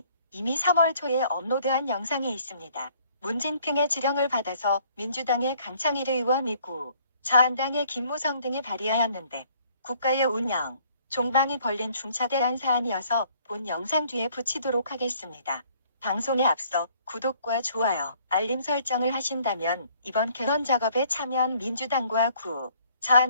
이미 3월 초에 업로드한 영상에 있습니다. 문진핑의 지령을 받아서 민주당의 강창일 의원이고 자한당의 김무성 등이 발의하였는데, 국가의 운영, 종방이 벌린 중차대한 사안이어서 본 영상 뒤에 붙이도록 하겠습니다. 방송에 앞서 구독과 좋아요, 알림 설정을 하신다면 이번 개헌 작업에 참여한 민주당과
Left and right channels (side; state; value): both; inverted; correlation -0.61